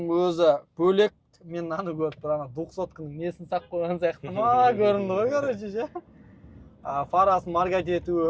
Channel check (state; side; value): identical; both; correlation 1.00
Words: өзі бөлек. Мен аны көріп тұрмын, 200-кының несін сақ қойған сияқты ма көрінді ғой, короче ше. Фарасын маркат